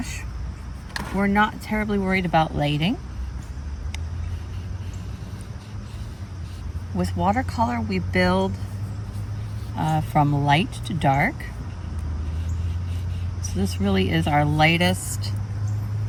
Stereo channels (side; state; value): both; identical; correlation 1.00